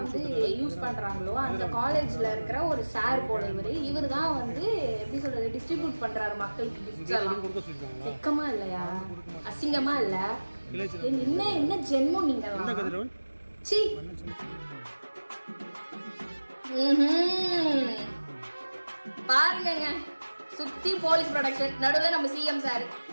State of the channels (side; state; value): both; inverted; correlation -1.00